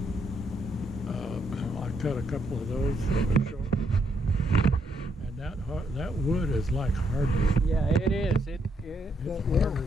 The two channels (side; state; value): both; normal; correlation 0.75